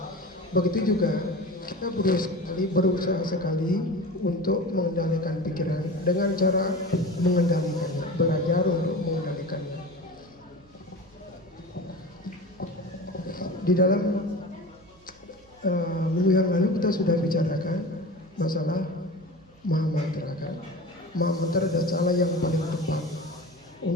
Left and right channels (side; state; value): right; noise; hum, 29 dB below the sound